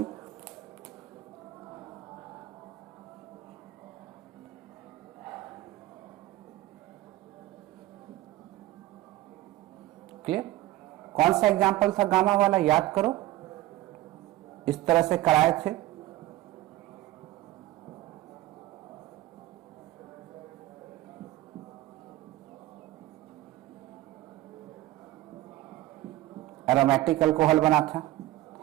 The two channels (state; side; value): quieter; left; 16.3 dB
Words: क्लियर? कौन सा एग्जाम्पल था गामा वाला, याद करो। इस तरह से कराए थे। एरोमेटिक अल्कोहल बना था,